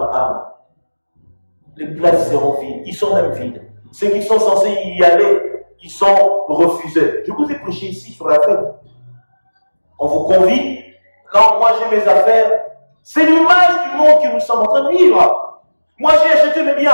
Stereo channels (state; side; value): inverted; both; correlation -1.00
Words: les places seront vides. Ils sont même vides. Ceux qui sont censés y aller, ils sont refusés. Je vous ai prêché ici sur la fête. On vous convie. Non, moi j'ai mes affaires. C'est l'image du monde que nous sommes en train de vivre. Moi j'ai acheté mes